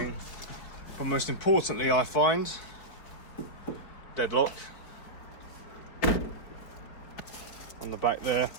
But most importantly, I find deadlock on the back there.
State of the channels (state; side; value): late; right; 4.8 ms